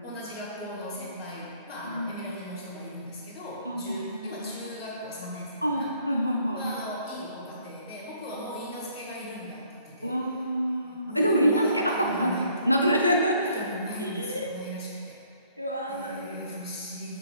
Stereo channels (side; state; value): both; inverted; correlation -0.62